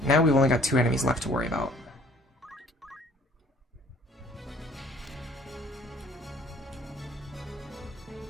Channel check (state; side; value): normal; both; correlation 0.55